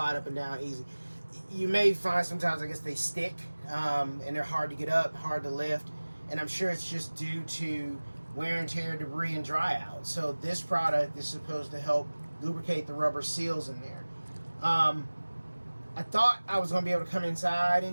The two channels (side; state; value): both; inverted; correlation -1.00